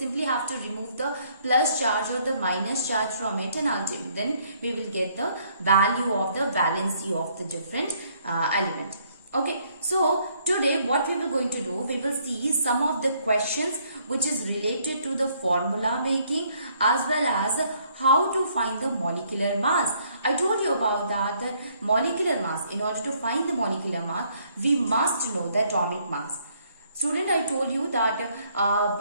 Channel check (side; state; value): both; inverted; correlation -0.67